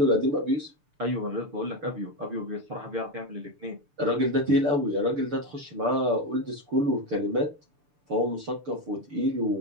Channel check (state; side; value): late; left; 6.9 ms